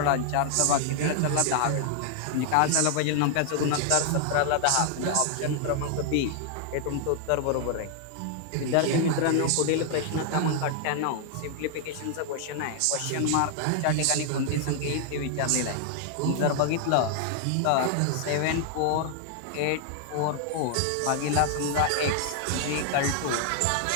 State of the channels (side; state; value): both; different; correlation 0.00